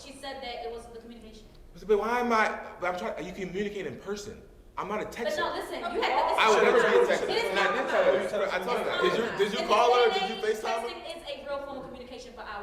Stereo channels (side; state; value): both; identical; correlation 1.00